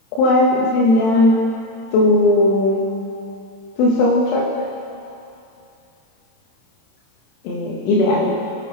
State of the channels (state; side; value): late; right; 31 ms